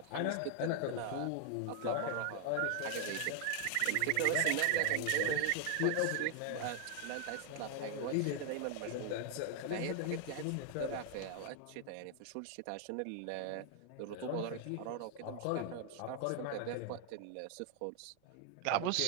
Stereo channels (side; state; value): both; different; correlation 0.00